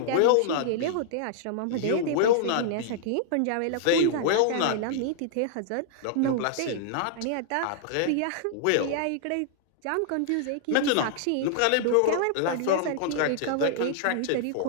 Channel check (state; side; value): different; both; correlation -0.01